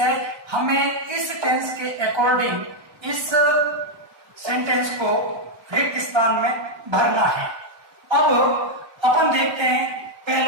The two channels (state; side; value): late; left; 1.3 ms